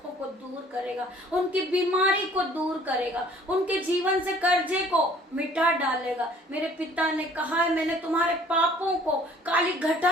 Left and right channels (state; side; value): normal; both; correlation 0.54